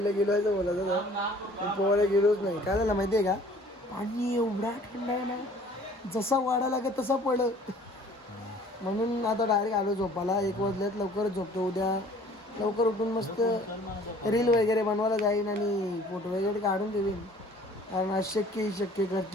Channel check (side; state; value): both; normal; correlation 0.52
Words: गेलो आहे बोलायचं पोहायला गेलोच नाही. काय झालं माहितीये का, पाणी एवढा थंड आहे ना, जसा वाढा लागत तसा पडलं. म्हणून आता डायरेक्ट आलो झोपाला. 1 वाजल्यात लवकरच झोपतो. उद्या लवकर उठून मस्त रील वगैरे बनवायला जाईन आणि फोटो वगैरे काढून देईन. कारण अशक्य शक्य